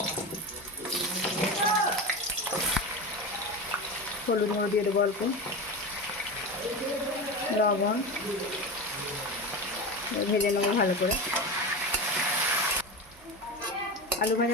হলুদ গুঁড়ো দিয়ে দেবো, অল্প লবণ, ভেজে নেবো ভালো করে। আলু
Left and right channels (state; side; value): normal; both; correlation 0.23